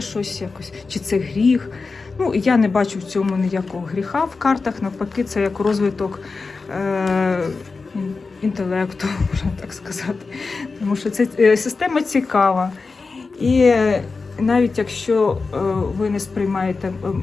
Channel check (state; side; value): quieter; right; 4.2 dB